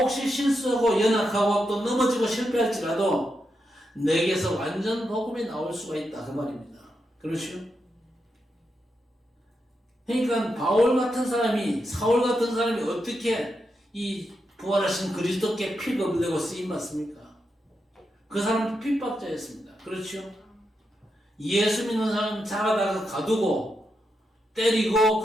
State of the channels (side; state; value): both; normal; correlation 0.85